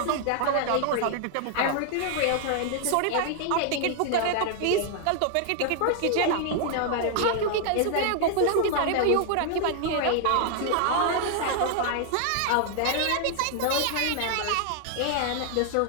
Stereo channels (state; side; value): different; both; correlation 0.00